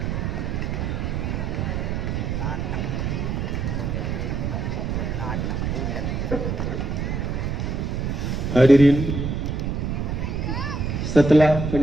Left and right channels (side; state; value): right; noise; rumble, 1 dB below the sound